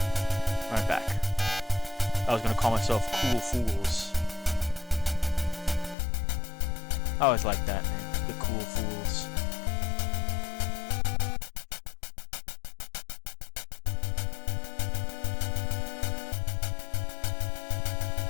I was gonna call myself Cool Fools. I always liked that name, the Cool Fools.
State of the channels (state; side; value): drops out; right; at 6.0 s